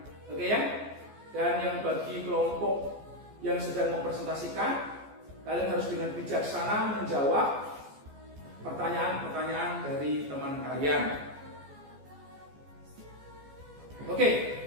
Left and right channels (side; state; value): left; late; 14 ms